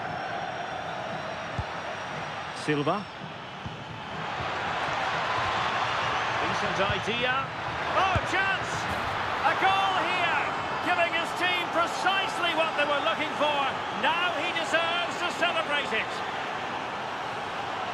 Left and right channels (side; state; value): both; identical; correlation 1.00